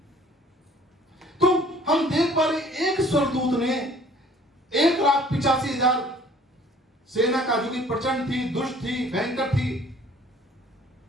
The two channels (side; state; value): both; normal; correlation 0.55